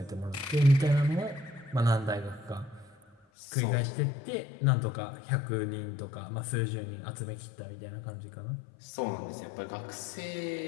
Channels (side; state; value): right; drops out; at 3.2 s